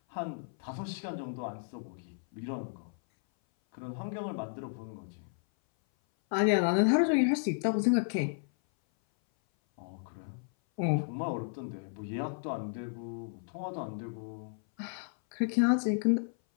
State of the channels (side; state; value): right; silent; 56 dB below the other